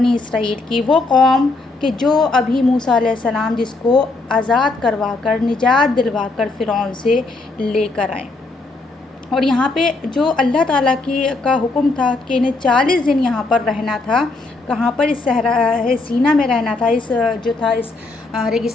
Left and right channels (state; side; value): quieter; right; 3.4 dB